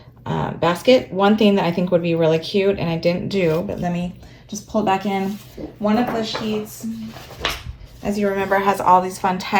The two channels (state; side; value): identical; both; correlation 1.00